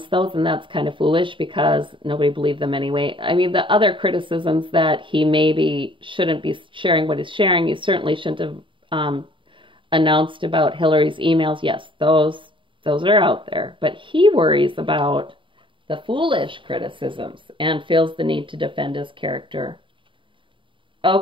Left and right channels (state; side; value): late; left; 0.24 ms